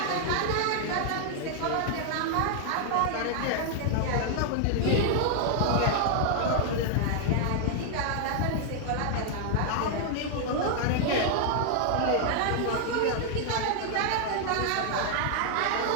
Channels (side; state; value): both; different; correlation 0.00